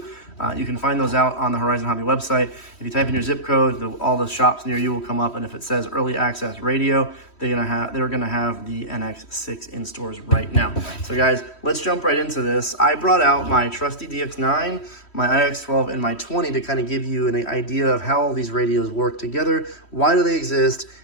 You can find those out on the Horizon Hobby website. If you type in your zip code, all the shops near you will come up, and if it says early access radio, they're gonna have the NX6 in stores right now. So guys, let's jump right into this. I brought out my trusty DX9, my IX12, and my 20 to kind of give you an idea of how all these radios work together, why do they exist,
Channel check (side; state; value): right; late; 3.1 ms